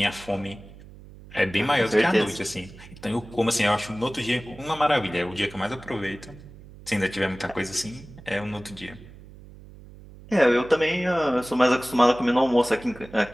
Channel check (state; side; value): noise; right; hum, 19 dB below the sound